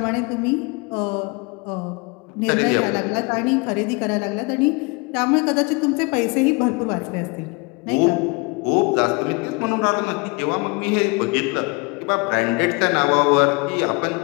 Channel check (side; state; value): right; quieter; 29.1 dB